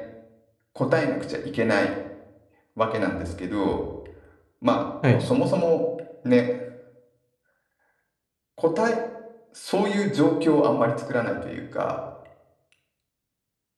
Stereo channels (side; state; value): both; identical; correlation 1.00